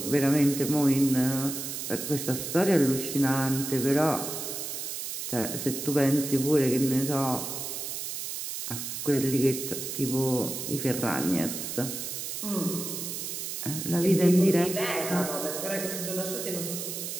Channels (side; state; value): right; noise; hiss, 5 dB below the sound